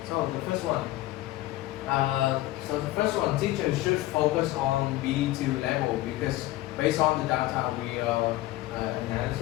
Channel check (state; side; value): quieter; right; 16.8 dB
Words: So the first one, teachers should focus on B2 level because based on the data we